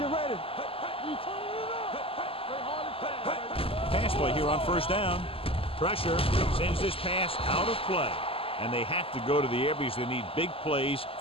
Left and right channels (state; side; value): late; right; 0.27 ms